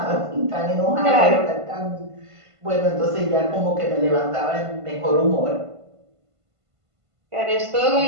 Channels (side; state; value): left; late; 1.5 ms